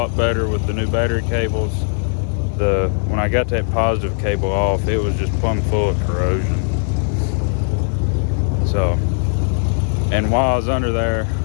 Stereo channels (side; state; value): right; silent; 60 dB below the other